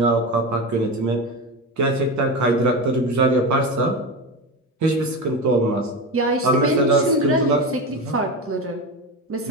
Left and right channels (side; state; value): both; normal; correlation 0.21